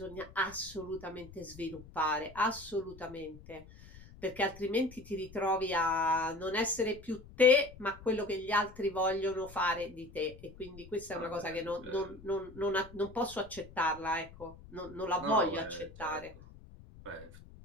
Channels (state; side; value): noise; left; rumble, 19 dB below the sound